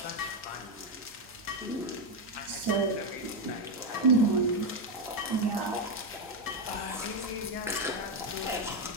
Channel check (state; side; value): normal; both; correlation 0.05